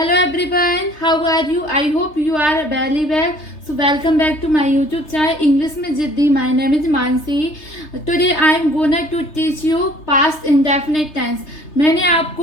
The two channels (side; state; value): right; late; 3.3 ms